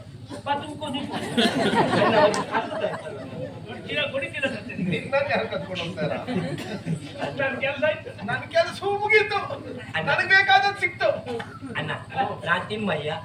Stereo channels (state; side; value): identical; both; correlation 1.00